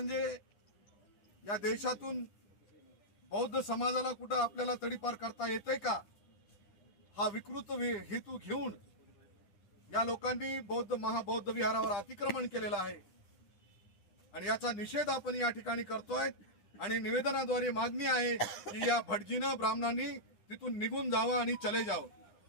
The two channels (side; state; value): right; late; 9.9 ms